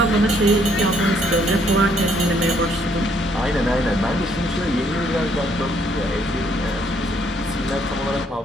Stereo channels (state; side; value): normal; both; correlation 0.67